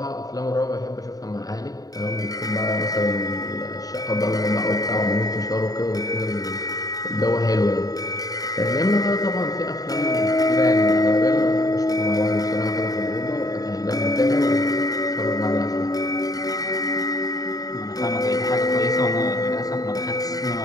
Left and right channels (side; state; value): right; late; 0.18 ms